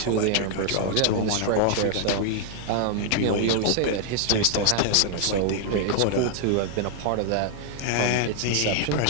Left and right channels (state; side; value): different; both; correlation 0.00